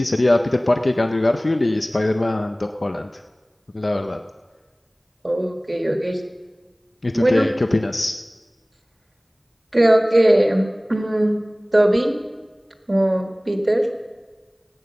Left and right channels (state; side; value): normal; both; correlation 0.98